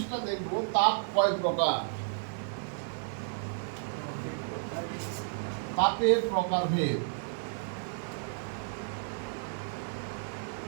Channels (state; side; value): silent; left; digital silence